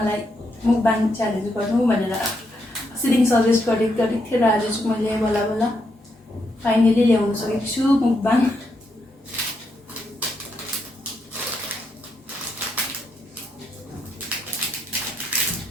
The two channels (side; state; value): both; normal; correlation 0.79